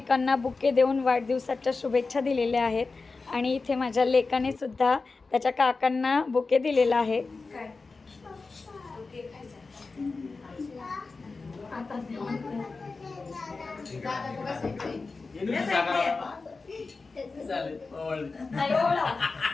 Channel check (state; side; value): quieter; right; 4.0 dB